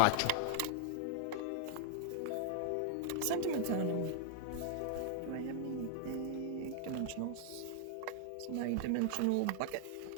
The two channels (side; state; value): both; different; correlation 0.00